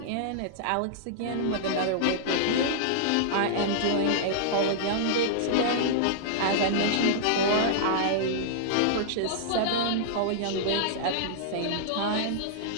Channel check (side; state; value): both; different; correlation -0.02